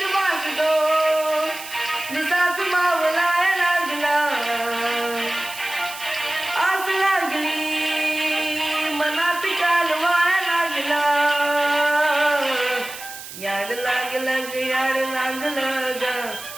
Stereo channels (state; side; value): noise; right; hiss, 12 dB below the sound